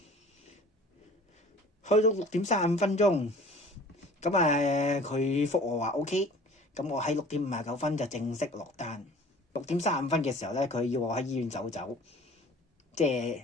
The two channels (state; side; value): normal; both; correlation 0.46